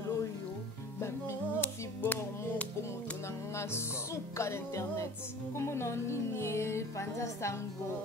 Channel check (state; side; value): normal; both; correlation 0.43